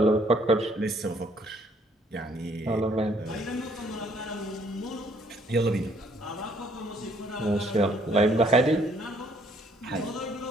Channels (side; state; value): both; normal; correlation 0.64